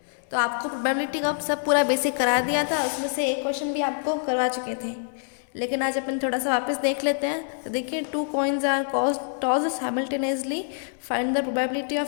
तो आपको प्रोबेबिलिटी का सब पूरा बेसिक करा दिया था, उसमें से एक क्वेश्चन भी आपको करवा चुके थे, लेकिन आज अपन थोड़ा सा वापस देख लेते हैं। तो देखिए, 2 coins are tossed simultaneously, find the probability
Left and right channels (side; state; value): right; silent; 61 dB below the other